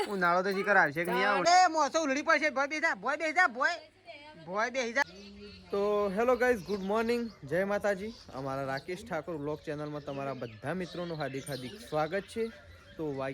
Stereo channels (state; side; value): identical; both; correlation 1.00